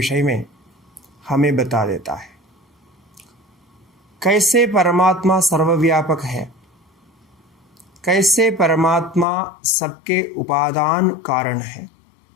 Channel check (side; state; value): right; drops out; at 9.2 s